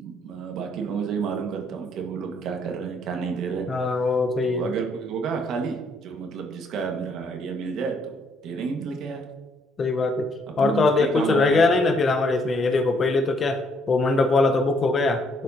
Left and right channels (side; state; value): both; normal; correlation 0.69